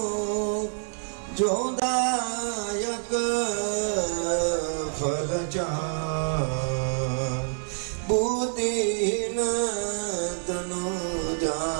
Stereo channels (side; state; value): left; silent; digital silence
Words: जो दायक फल चार बुद्धिहीन तनु